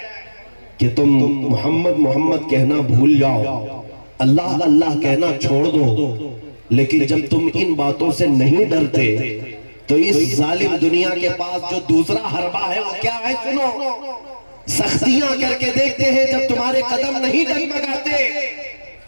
کہ تم محمد محمد کہنا بھول جاؤ، اللہ اللہ کہنا چھوڑ دو۔ لیکن جب تم ان باتوں سے نہیں ڈرتے تو اس ظالم دنیا کے پاس جو دوسرا حربہ ہے وہ کیا ہے؟ سنو، سختیاں کر کے دیکھتے ہیں، جب تمہارے قدم نہیں ڈگمگاتے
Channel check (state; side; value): inverted; both; correlation -1.00